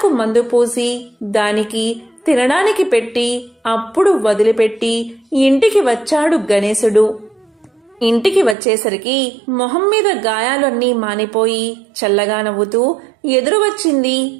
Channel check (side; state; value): left; drops out; at 8.6 s